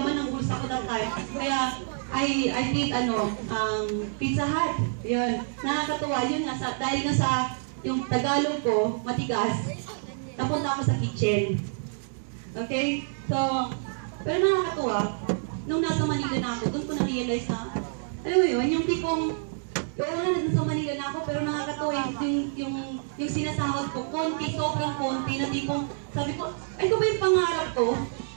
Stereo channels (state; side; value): silent; left; 60 dB below the other